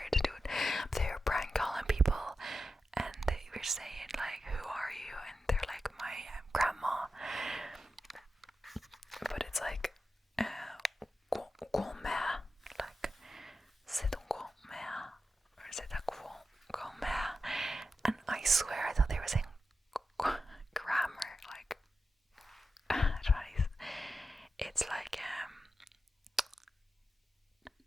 to do it. But they were prank calling people, and they were saying like, "Who are you?" And they're like, "My grandma." But it's like, grand-mère, like, c'est ton grand-mère, or c'est ta grand-mère. And I swear I thought they were saying grammar, like, I don't know, it's like,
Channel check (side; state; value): both; normal; correlation 0.90